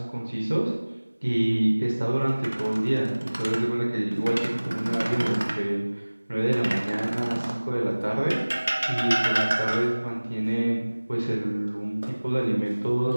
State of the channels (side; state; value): both; inverted; correlation -1.00